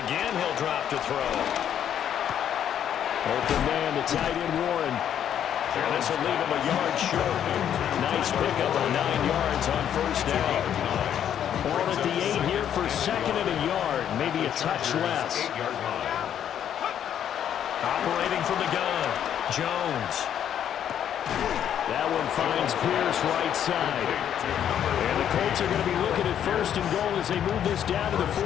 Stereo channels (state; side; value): quieter; right; 9.7 dB